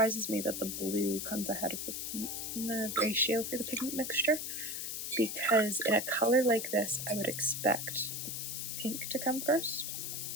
me that the blue comes ahead of the pink in the ratio for the pigment mixture, because in a color like this, I would expect the pink to come first,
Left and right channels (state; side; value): noise; left; hiss, 4 dB below the sound